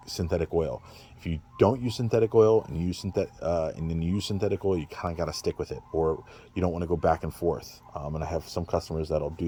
synthetic oil. If you don't use synthetic oil and you use and then you use synthetic oil, you kind of got to stick with it, or you don't want to go back and forth. And I have some customers that'll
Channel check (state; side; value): identical; both; correlation 1.00